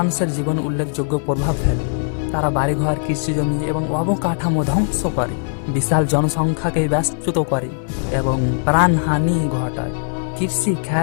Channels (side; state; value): right; silent; 62 dB below the other